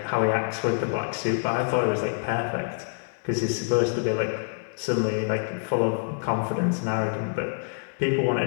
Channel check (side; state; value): right; silent; 61 dB below the other